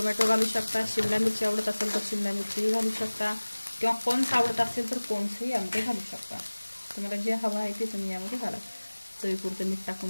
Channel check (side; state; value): both; inverted; correlation -1.00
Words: घालू शकता, शिमला मिरची आवडत असेल तर शिमला मिरची घालू शकता, किंवा कॉर्न्स आवडत असेल तर कॉर्न्सही यामध्ये घालू शकता। तुम्हाला जे हवं आहे ते तुम्ही यामध्ये घाला। चवीपुरतं मीठ